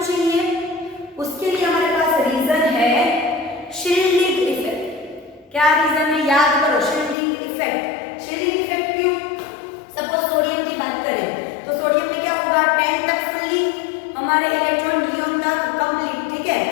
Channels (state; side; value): drops out; right; at 7.2 s